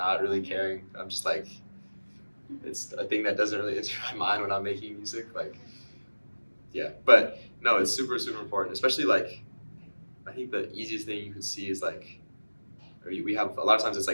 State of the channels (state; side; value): inverted; both; correlation -1.00